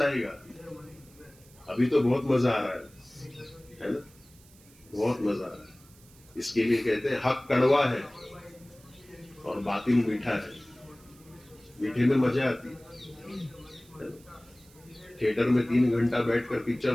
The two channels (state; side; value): noise; right; hiss, 26 dB below the sound